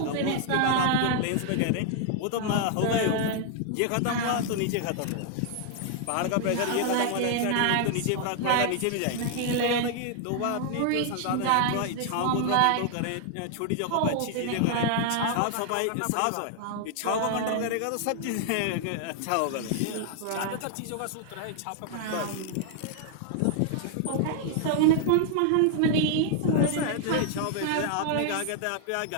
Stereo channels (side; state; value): both; different; correlation 0.00